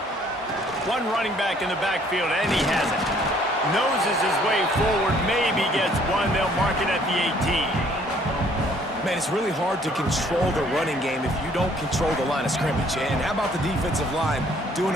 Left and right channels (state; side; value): normal; both; correlation 0.61